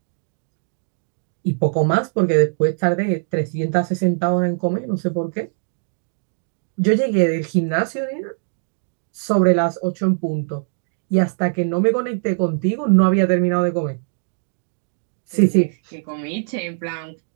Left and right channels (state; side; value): silent; left; 65 dB below the other